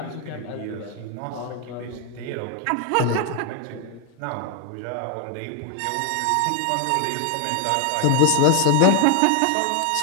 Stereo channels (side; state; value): both; different; correlation 0.01